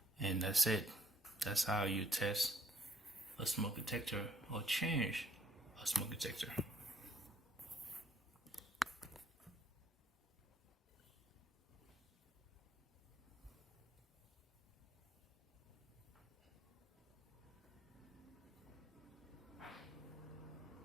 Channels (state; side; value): normal; both; correlation 0.67